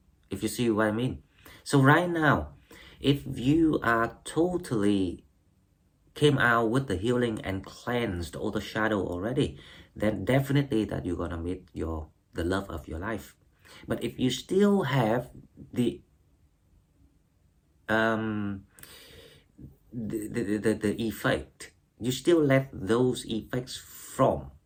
if you see what I mean. So right now, if you are totally came out with the healing and cleansed all the shadow already, then definitely that you're gonna meet the love of your life. But if you still have the effect, you still let those effects from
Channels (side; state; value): both; identical; correlation 1.00